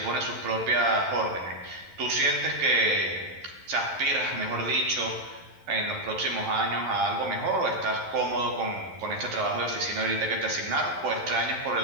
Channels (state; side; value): late; left; 11 ms